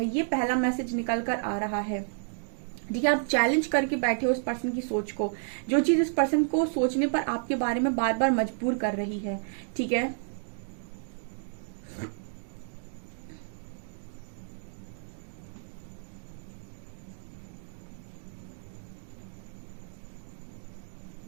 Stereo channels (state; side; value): silent; left; digital silence